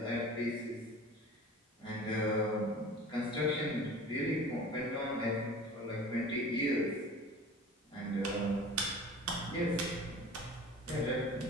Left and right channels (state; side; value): normal; both; correlation 0.40